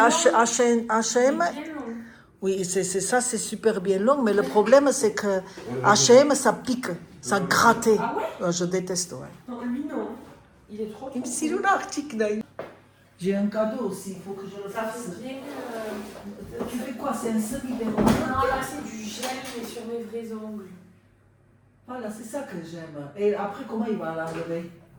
Bien long. Oui, ça, c'est super bien long, mais le problème, c'est que H&M, ça pique, ça gratte. Ah ouais? Je déteste, ouais. Non, lui non. Il est trop. Il me dit, j'ai un cadeau aussi, il faut que je le Ça fasse. fait bien. Tu fais quoi? C'est un semi-béron? Non, là c'est du gel, mais sur mes vrais ongles. Voilà, c'est ça que j'aime. Et après, comment il va l'enlever?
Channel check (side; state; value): both; identical; correlation 1.00